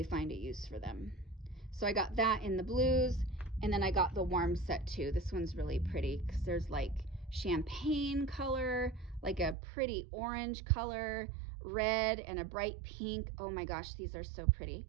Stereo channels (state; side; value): drops out; left; at 9.6 s